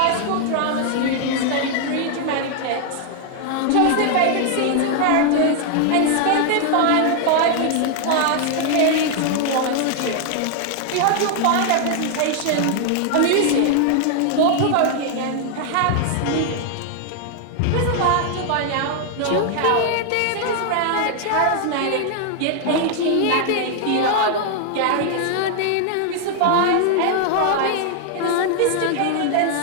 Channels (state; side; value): different; both; correlation 0.00